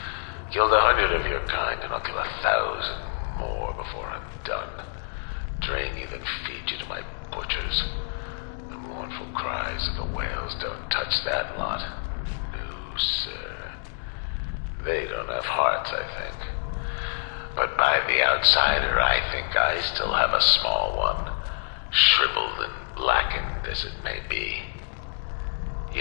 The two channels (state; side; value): silent; right; digital silence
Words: Killed 100 of your kind, and I'll kill 1,000 more before I'm done. Drain you, then feed you to my butchers. The mournful cries of the whales don't touch that lot. No, sir. They don't have hearts, I think. But by the outsider, I think I still have a small one. Shriveled and blackened as it may be.